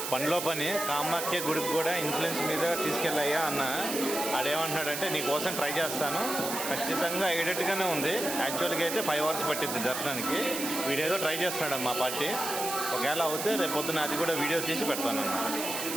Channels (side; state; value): right; noise; hiss, 4 dB below the sound